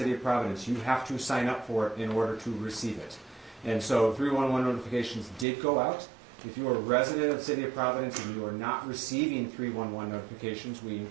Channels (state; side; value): drops out; left; at 5.5 s